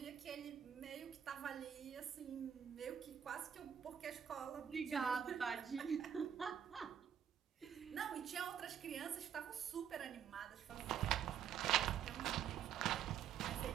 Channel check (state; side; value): quieter; left; 8.8 dB